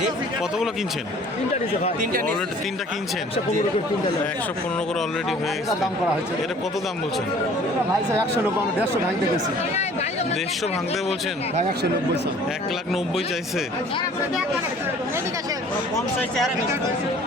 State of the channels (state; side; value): normal; both; correlation 0.52